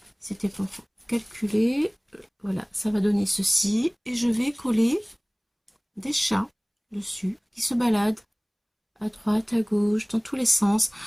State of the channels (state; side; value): identical; both; correlation 1.00